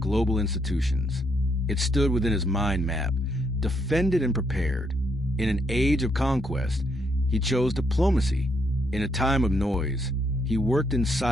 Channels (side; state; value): both; normal; correlation 0.75